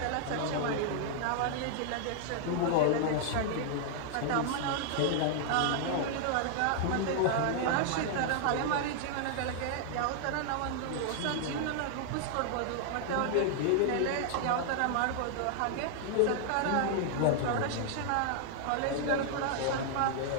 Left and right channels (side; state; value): both; different; correlation -0.01